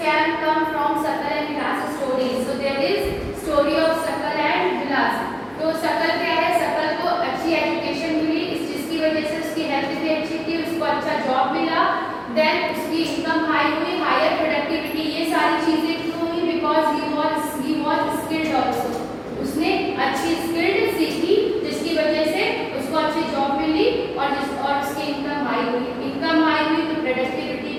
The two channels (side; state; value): both; identical; correlation 1.00